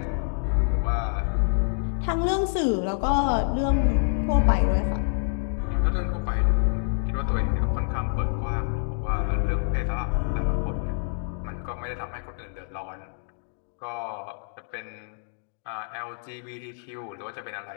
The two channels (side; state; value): right; silent; digital silence